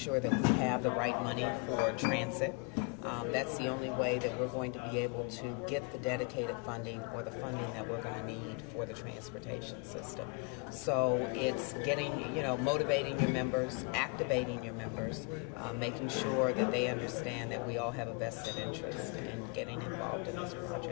that we have the right money for transit. That's the only way that we're going to be able to get the dedicated funding or the funding that we're going to need for the transportation system. So it's getting, motivating your members, activating your members, making sure that they understand that we all have a vested interest in getting involved in this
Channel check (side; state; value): right; quieter; 34.6 dB